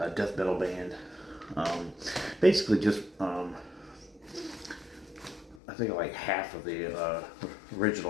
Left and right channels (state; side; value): drops out; right; at 5.6 s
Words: death metal band. Basically just, I think like half of the